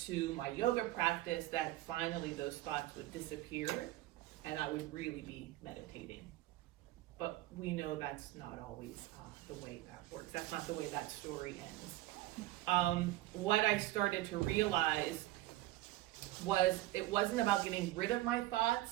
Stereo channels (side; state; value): left; quieter; 16.5 dB